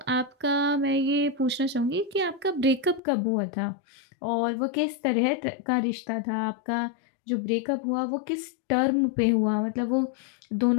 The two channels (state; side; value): drops out; right; at 3.0 s